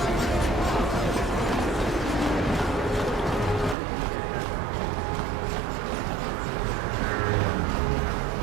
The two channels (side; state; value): left; drops out; at 3.8 s